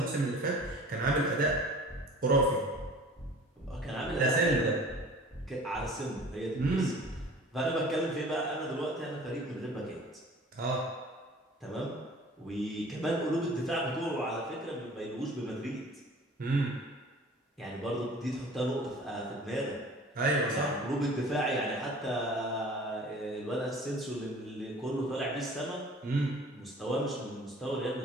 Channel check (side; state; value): both; normal; correlation 0.46